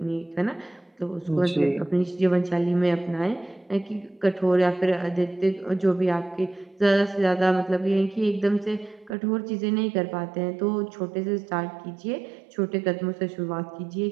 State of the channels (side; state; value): left; drops out; at 9.2 s